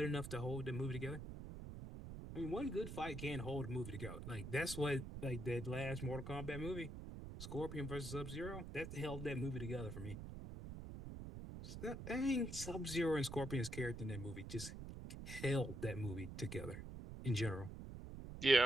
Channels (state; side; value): noise; right; rumble, 8 dB below the sound